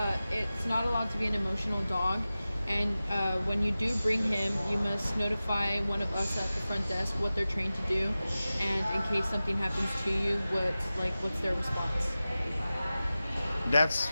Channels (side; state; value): both; inverted; correlation -0.96